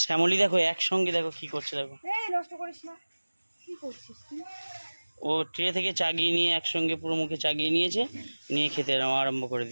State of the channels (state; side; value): inverted; both; correlation -1.00